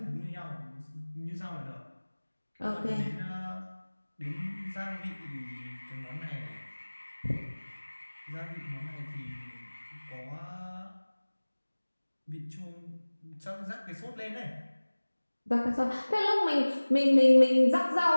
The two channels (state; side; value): inverted; both; correlation -1.00